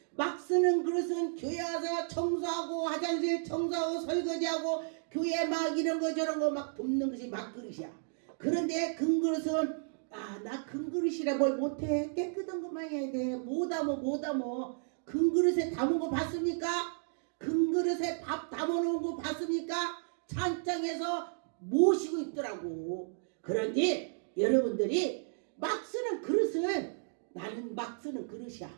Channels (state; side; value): silent; left; digital silence